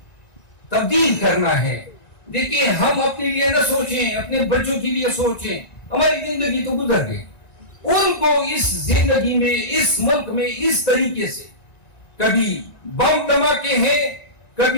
تبدیل کرنا ہے. دیکھیں, ہم اپنے لیے نہ سوچیں, اپنے بچوں کے لیے سوچیں. ہماری زندگی تو گزر گئی, ان کو اس زندگی میں, اس ملک میں اس طریقے سے کبھی بم دھماکے ہیں,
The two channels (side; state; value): right; late; 1.9 ms